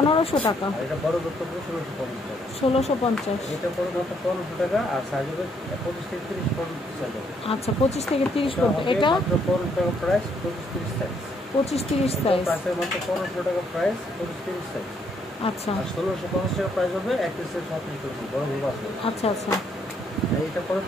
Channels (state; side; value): normal; both; correlation 0.71